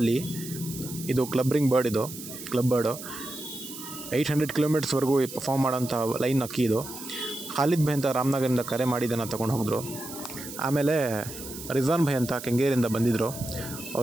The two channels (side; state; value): right; noise; hiss, 11 dB below the sound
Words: ಇದು ಕ್ಲಬ್ರಿಂಗ್ ಬರ್ಡ್, ಇದು ಕ್ಲಬ್ ಬರ್ಡು 800 ಕಿಲೋಮೀಟರ್ಸ್ವರೆಗೂ ಪರ್ಫಾರ್ಮ್ ಮಾಡೋಂಥ ಲೈನ್ ಅಕ್ಕಿ ಇದು. ಖಾಲಿದ್ ಭಾಯ್ ಅಂತ ರಾಮನಗರದಿಂದ ಕರೆ ಮಾಡಿದ್ದನ್ನು ತೊಗೊಂಡು ಹೋಗಿದ್ರು. ಆಮೇಲೆ ರಿಜ್ವಾನ್ ಭಾಯ್ ಅಂತ ಕೆಂಗೇರಿಯಿಂದ ಬಂದಿದ್ದರು.